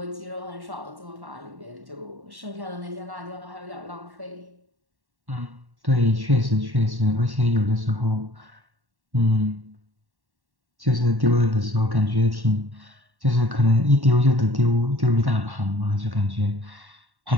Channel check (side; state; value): left; late; 1.1 ms